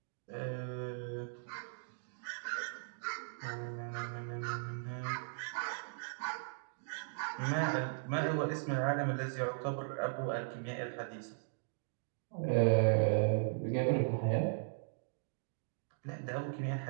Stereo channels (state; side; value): silent; left; digital silence